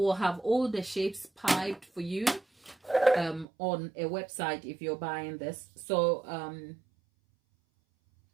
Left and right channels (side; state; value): left; drops out; at 3.5 s